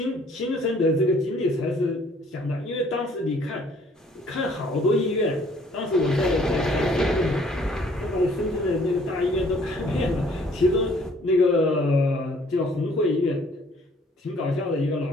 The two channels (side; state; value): both; normal; correlation 0.59